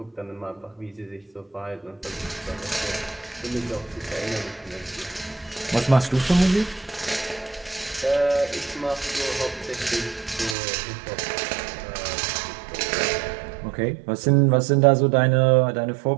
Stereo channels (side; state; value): left; drops out; at 10.6 s